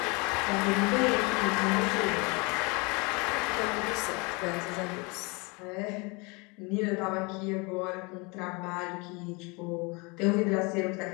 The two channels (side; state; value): right; quieter; 28.7 dB